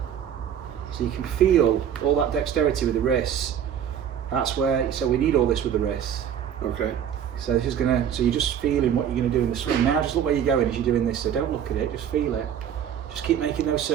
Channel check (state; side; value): quieter; left; 9.0 dB